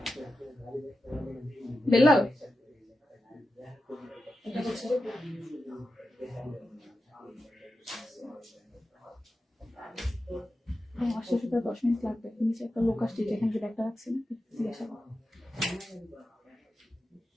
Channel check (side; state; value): both; normal; correlation 0.91